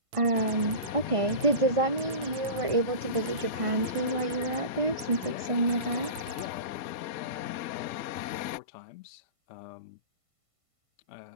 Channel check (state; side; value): late; left; 1.5 ms